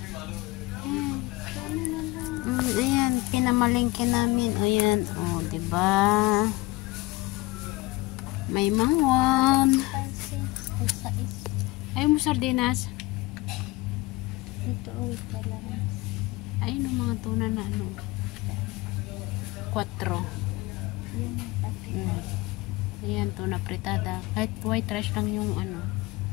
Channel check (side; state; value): right; quieter; 21.0 dB